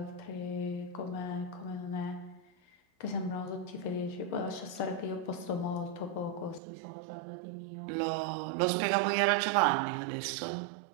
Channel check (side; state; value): left; drops out; at 6.6 s